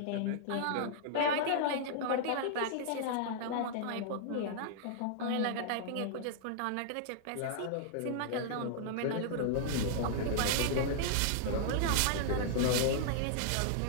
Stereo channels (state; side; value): different; both; correlation -0.01